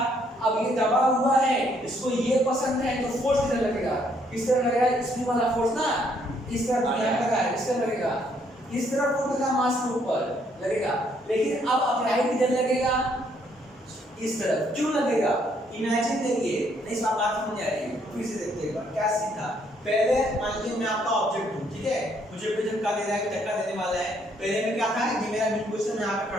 अब ये दबा हुआ है, इसको ये पसंद है, तो फोर्स किधर लगेगा, किस तरह लगेगा, स्प्रिंग वाला फोर्स ना इस तरफ लगा है, इस तरह लगेगा, इस तरफ फोर्स लगा, मास के ऊपर लगेगा। लेकिन अब अप्लाई किधर लगेगा, इस तरफ, क्यों लगेगा, इमेजिन करिए, नहीं सब बात समझ आ रही है, फिर से देखते हैं क्या सीखा। पहले मान लीजिए मैं आपका ऑब्जेक्ट हूं, ठीक है, मुझे कोई धक्का दे रहा है, धक्का देने वाला है, पहले में क्या था कि मेरा मीन पोजीशन यहाँ पे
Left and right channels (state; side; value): normal; both; correlation 0.69